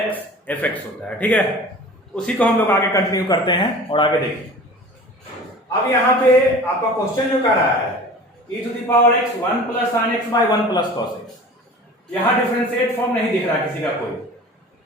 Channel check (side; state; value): both; normal; correlation 0.40